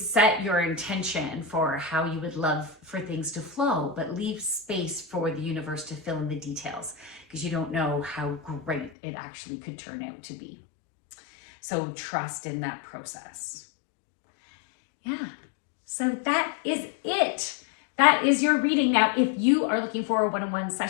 your intention for how you would love for things to flow, but leave space for the universe to fill in the details, because you don't know how great it actually could turn out to be. So trust in that process. Yeah, so that is it. That is your reading. Now, if you are looking for a one-on-one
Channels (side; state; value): right; drops out; at 8.9 s